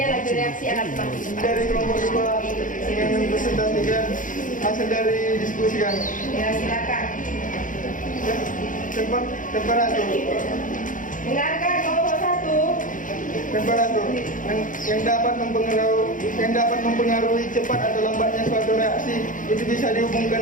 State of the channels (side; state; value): right; late; 0.38 ms